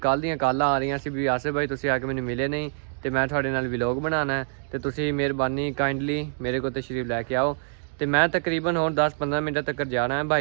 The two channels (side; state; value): left; silent; digital silence